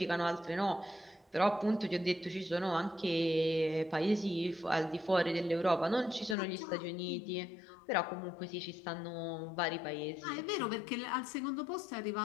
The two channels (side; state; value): right; drops out; at 6.4 s